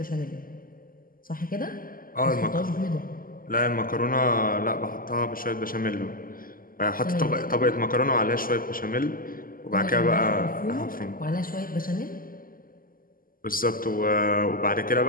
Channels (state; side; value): late; right; 0.41 ms